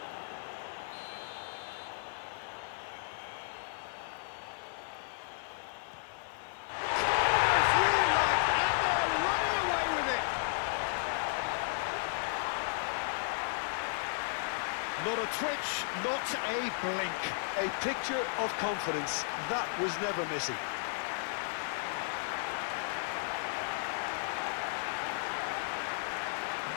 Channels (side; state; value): right; silent; 55 dB below the other